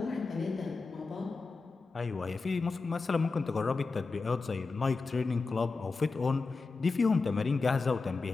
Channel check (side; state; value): right; quieter; 4.1 dB